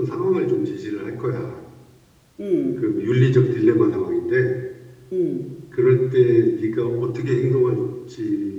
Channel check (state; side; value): identical; both; correlation 1.00